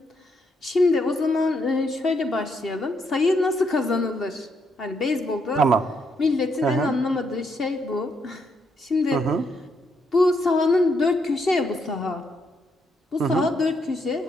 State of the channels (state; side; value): normal; both; correlation 0.76